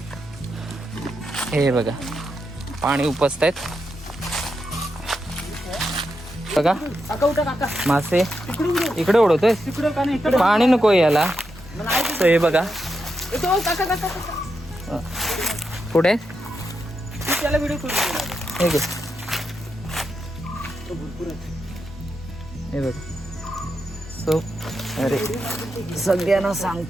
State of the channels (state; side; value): normal; both; correlation 0.85